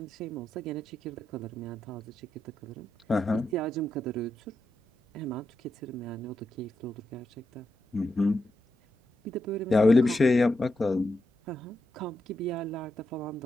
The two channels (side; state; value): both; normal; correlation 0.85